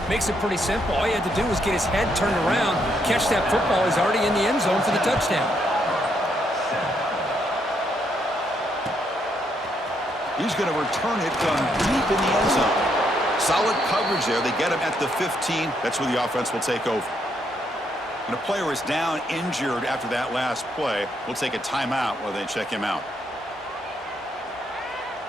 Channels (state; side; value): normal; both; correlation 0.75